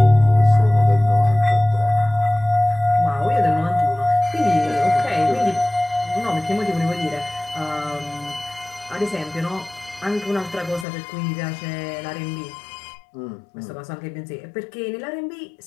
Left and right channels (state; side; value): drops out; right; at 10.9 s